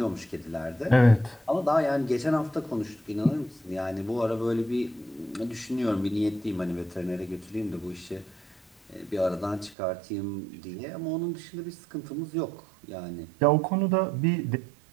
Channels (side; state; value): left; drops out; at 9.8 s